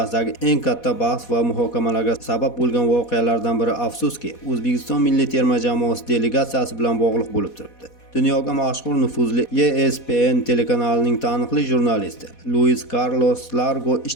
eng katta bahs va muhokamalarga sabab bo'lgan voqealardan biri afsuski O'zbekiston milliy terma jamoasi delegatsiyasi bilan bog'liq bo'lib turibdi. Dunyoga mashhur nufuzli ESPN telekanalining taniqli jurnalisti Luis Carlos Largo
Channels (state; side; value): late; right; 4.1 ms